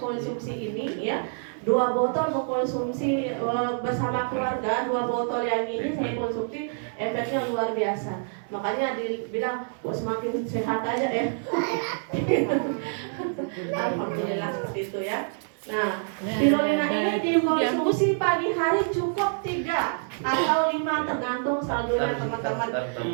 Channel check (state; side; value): silent; left; 60 dB below the other